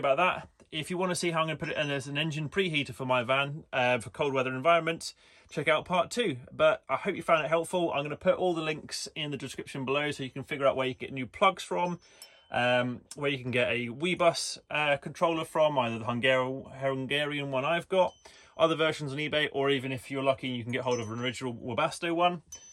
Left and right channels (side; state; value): both; identical; correlation 1.00